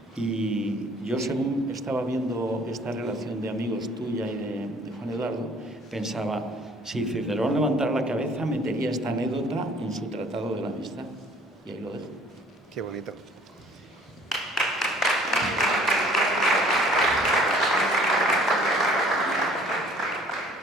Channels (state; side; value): normal; both; correlation 0.55